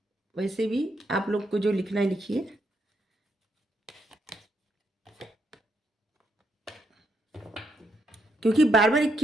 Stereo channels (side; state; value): both; normal; correlation 0.78